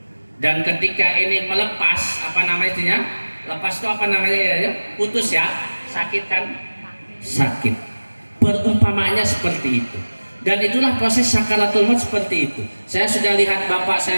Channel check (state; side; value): inverted; both; correlation -1.00